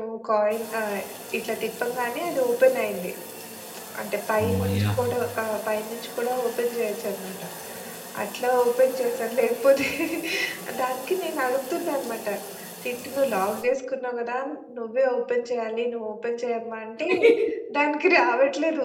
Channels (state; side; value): identical; both; correlation 1.00